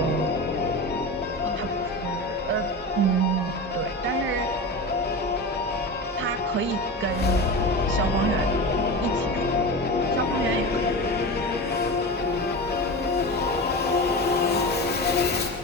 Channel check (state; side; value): normal; both; correlation 0.26